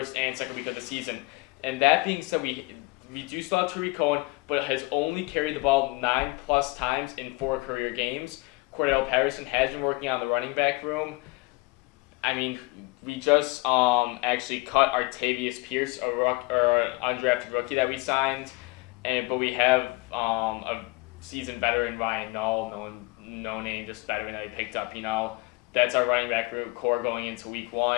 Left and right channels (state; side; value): quieter; right; 24.5 dB